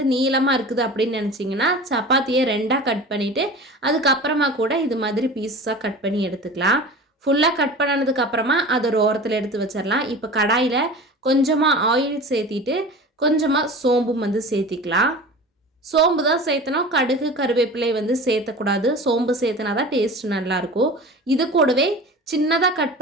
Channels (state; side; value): normal; both; correlation 0.36